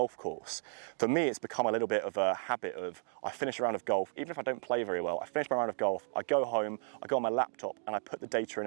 course. For me, it's become a little bit of a habit of, I finish a round of golf, even if I don't play very well, I finish my round of golf, I go home, I go on my laptop and I put the data in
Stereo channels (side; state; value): left; silent; digital silence